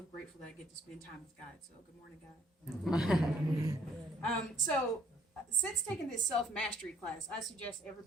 grateful that I get to spend time with God. So good morning, God. Since taking this self-mastery class, I suggest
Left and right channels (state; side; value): normal; both; correlation 0.63